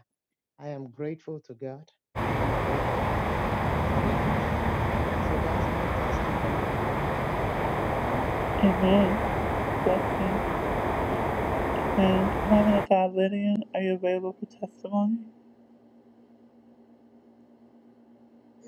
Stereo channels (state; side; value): identical; both; correlation 1.00